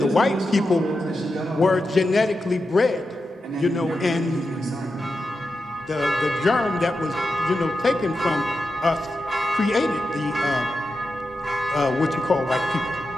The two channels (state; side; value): normal; both; correlation 0.90